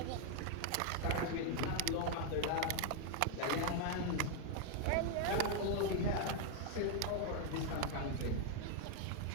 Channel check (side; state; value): both; different; correlation 0.00